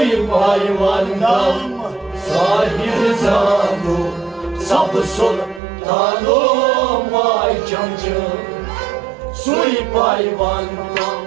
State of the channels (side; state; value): left; drops out; at 5.6 s